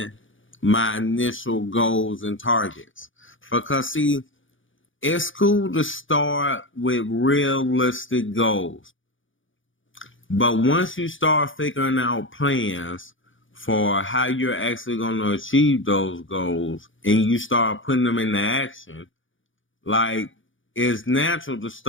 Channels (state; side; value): late; right; 0.57 ms